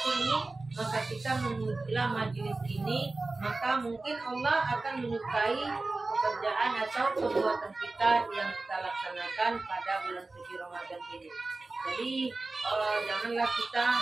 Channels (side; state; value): left; quieter; 3.4 dB